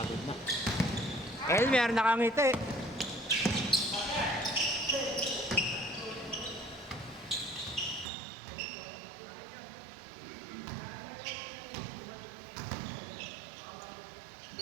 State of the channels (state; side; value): drops out; left; at 8.1 s